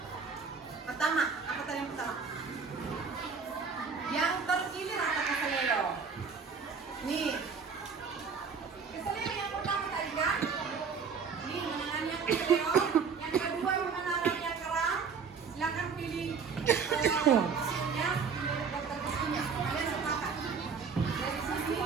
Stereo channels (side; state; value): left; quieter; 5.7 dB